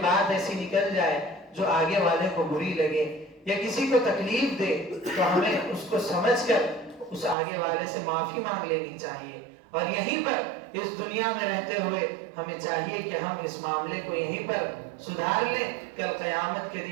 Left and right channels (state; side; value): drops out; left; at 7.4 s